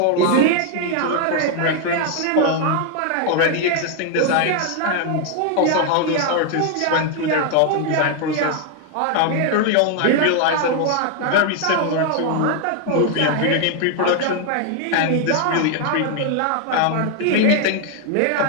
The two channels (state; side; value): different; both; correlation 0.00